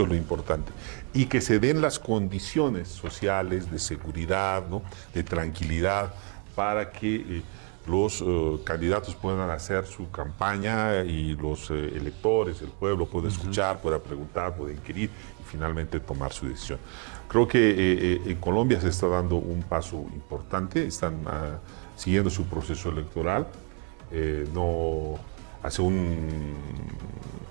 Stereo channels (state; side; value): quieter; left; 35.9 dB